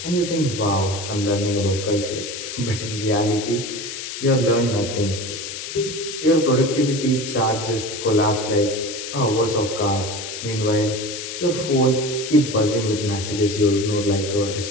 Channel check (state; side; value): noise; left; hiss, 8 dB below the sound